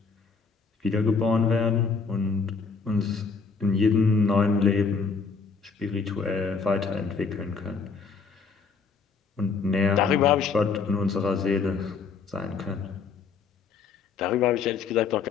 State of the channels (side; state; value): right; quieter; 5.1 dB